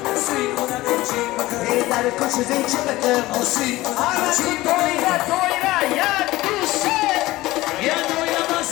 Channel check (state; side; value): quieter; right; 18.1 dB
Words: سی خودم چی بکر در کش زیچی بکر سی آره چی دویره یک دوسته یه دویره